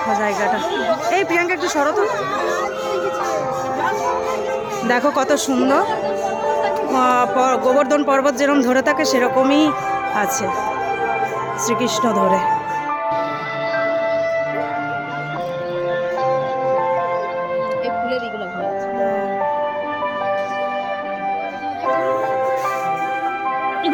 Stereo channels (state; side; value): identical; both; correlation 1.00